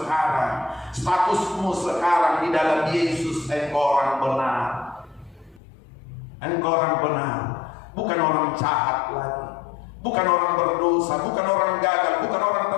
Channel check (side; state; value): right; drops out; at 5.6 s